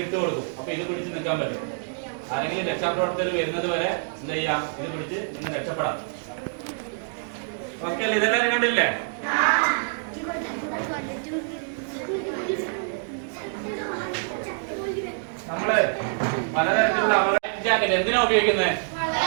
ഇട്ട് കൊടുക്കും. അപ്പൊ ഇത് പിടിച്ച് നിൽക്കാൻ പറ്റും. ആരെങ്കിലും രക്ഷാപ്രവർത്തകർ വരുന്നത് വരെ എന്താ ചെയ്യാം? ഇത് പിടിച്ച് ഇന്ന് രക്ഷപ്പെടാം. ഓക്കെ അല്ലേ? ഇതെല്ലാവരും കണ്ടില്ലേ? നമ്മള് പലതരത്തിലുള്ള ജാക്കറ്റ് എന്തിനാ ഉപയോഗിക്കുന്നത്?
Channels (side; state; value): left; silent; digital silence